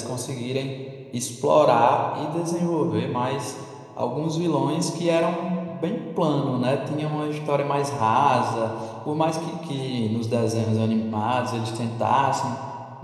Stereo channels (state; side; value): identical; both; correlation 1.00